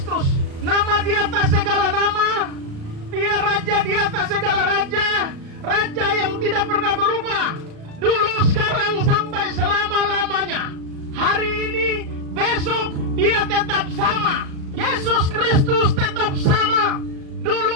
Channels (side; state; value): left; late; 37 ms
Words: Nama di atas segala nama. Dia raja di atas segala raja. Raja yang tidak pernah berubah, dulu, sekarang, sampai selama-lamanya. Hari ini, besok, dia tetap sama. Yesus Kristus tetap sama.